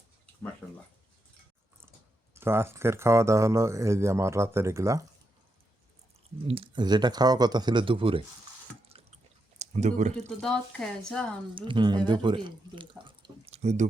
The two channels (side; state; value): both; normal; correlation 0.83